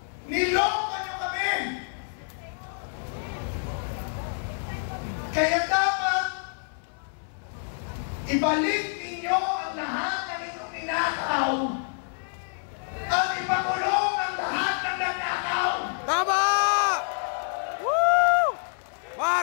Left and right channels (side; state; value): right; silent; 60 dB below the other